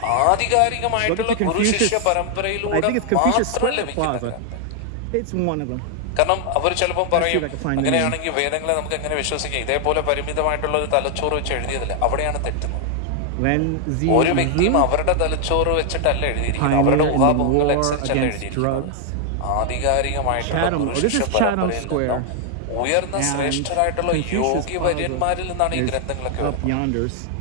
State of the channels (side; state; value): both; different; correlation 0.00